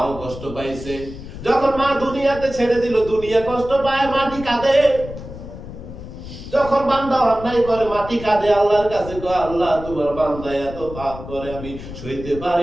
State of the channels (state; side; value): noise; left; rumble, 12 dB below the sound